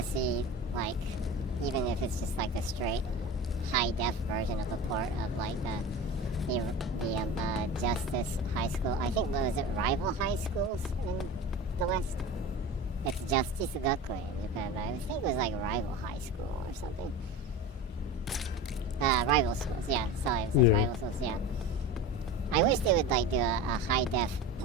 see, like, even if it's just like a straight high-def version of a port of, like, the Justice High School. I think, what was it, rival high schools in the West? It's Justice Gakuen in Japan, but I think it was like rival high school or something. Rival schools, yeah. Sorry, it says Yeah. rival schools, yeah. I wish they would, like, do a high-def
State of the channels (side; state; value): both; normal; correlation 0.31